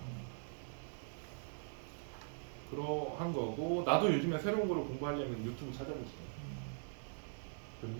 그러한 거고, 나도 요즘에 새로운 거를 공부하려면 유튜브 찾아보지.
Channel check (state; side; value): silent; left; 50 dB below the other